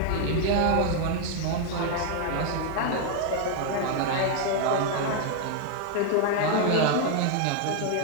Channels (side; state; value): both; different; correlation 0.00